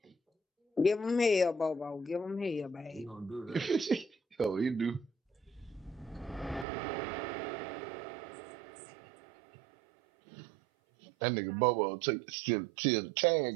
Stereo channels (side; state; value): left; drops out; at 6.7 s